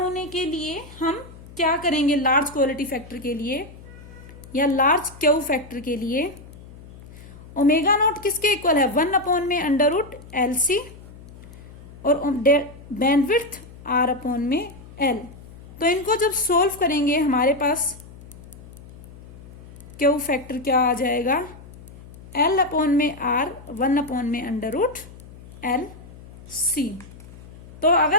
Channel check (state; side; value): noise; left; hum, 18 dB below the sound